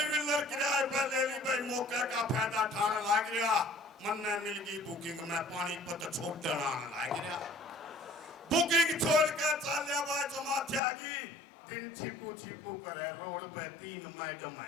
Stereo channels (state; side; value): drops out; right; at 10.8 s